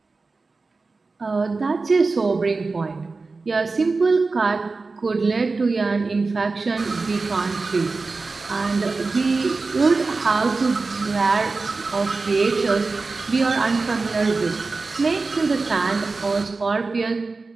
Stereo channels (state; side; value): quieter; left; 3.9 dB